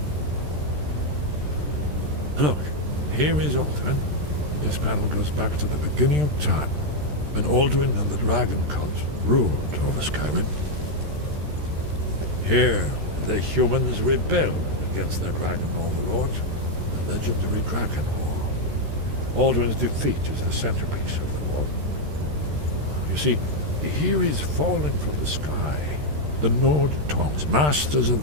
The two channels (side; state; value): left; late; 13 ms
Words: Look, here is Alduin. This panel goes back to the beginning of time, when Alduin and the dragon cult ruled over Skyrim. Here, the humans rebelled against their dragon overlord, the legendary Dragon War. Alduin's defeat is the centerpiece of the war. You see, here he's falling from the sky. The Nord Tongs, masters of